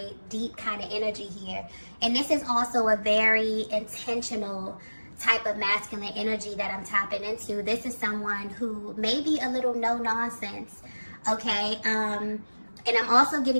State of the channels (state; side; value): inverted; both; correlation -1.00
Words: deep kind of energy here. And this is also a very intentional type of masculine energy that I'm tapping into. This is someone who may be a little no nonsense, okay? And I'm also